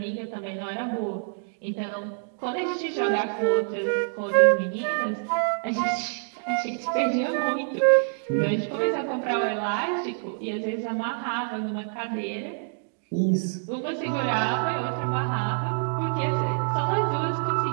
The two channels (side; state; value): left; silent; digital silence